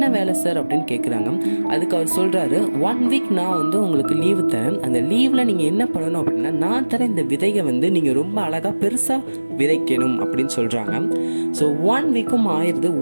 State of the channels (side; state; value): both; inverted; correlation -1.00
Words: வேலை சார் அப்படின்னு கேட்குறாங்க. அதுக்கு அவர் சொல்கிறாரு, 1 வீக் நான் உங்களுக்கு லீவு தரேன். அந்த லீவில் நீங்கள் என்ன பண்ணணும் அப்படின்னா, நான் தர இந்த விதையை நீங்கள் ரொம்ப அழகாக பெருசாக விதைக்கணும் அப்படின்னு சொல்கிறாங்க. ஸோ 1 வீக்கும் ஆயிடுது.